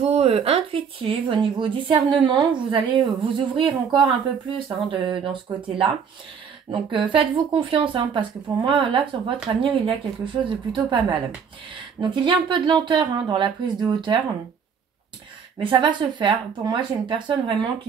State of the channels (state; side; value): quieter; left; 6.7 dB